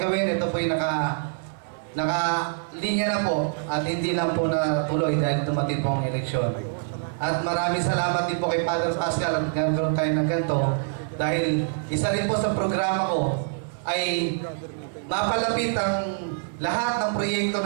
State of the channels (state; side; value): silent; left; 61 dB below the other